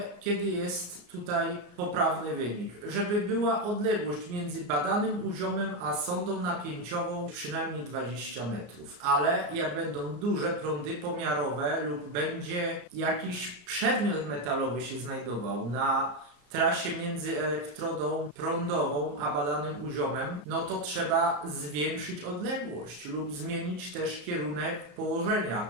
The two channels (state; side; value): late; left; 34 ms